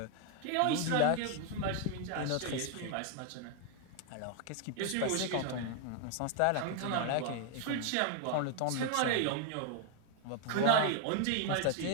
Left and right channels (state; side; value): different; both; correlation 0.00